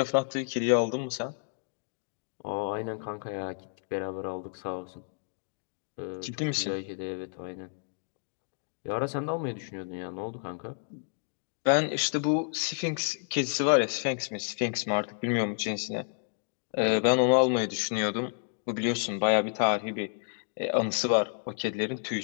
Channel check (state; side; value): silent; right; digital silence